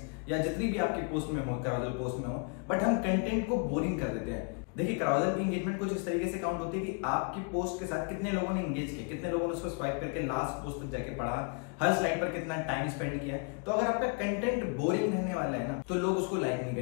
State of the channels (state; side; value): quieter; right; 34.3 dB